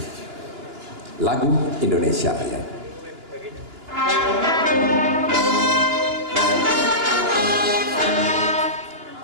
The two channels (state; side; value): late; left; 2.9 ms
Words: Lagu Indonesia Raya.